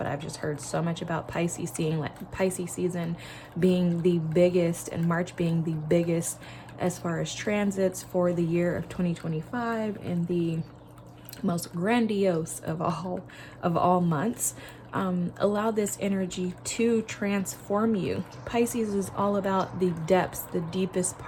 I've just heard so much about Pisces season being the biggest, and March being the biggest as far as transits for the year of 2025, and the most grandiose of all months. Allow this energy to transform you. Pisces is all about the depths, the deepest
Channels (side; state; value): both; identical; correlation 1.00